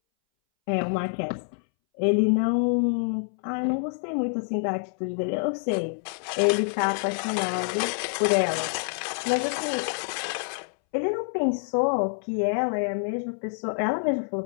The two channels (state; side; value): silent; right; 60 dB below the other